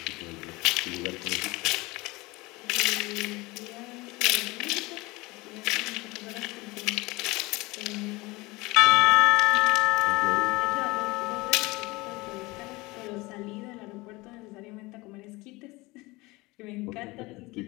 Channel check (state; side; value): quieter; right; 22.7 dB